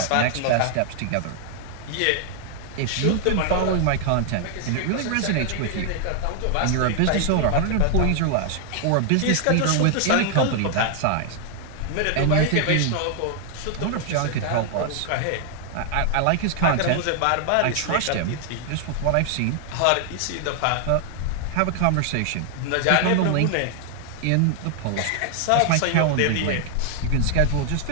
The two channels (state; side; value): different; both; correlation 0.00